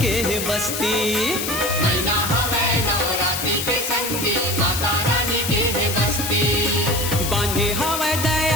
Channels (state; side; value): noise; left; hiss, 3 dB below the sound